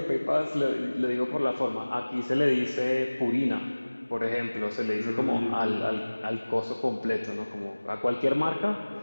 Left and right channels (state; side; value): inverted; both; correlation -1.00